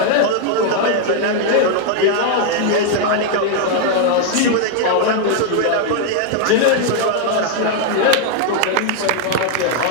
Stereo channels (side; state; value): both; different; correlation 0.00